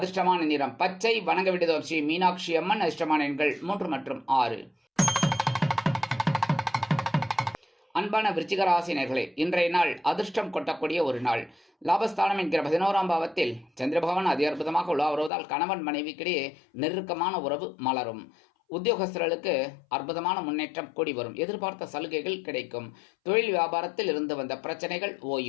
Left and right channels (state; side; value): drops out; right; at 15.3 s